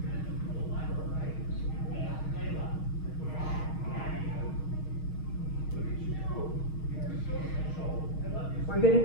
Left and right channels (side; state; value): right; late; 6.4 ms